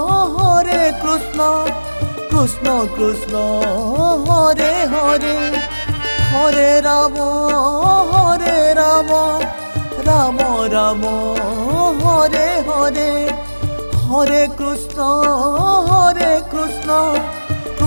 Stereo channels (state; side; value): inverted; both; correlation -1.00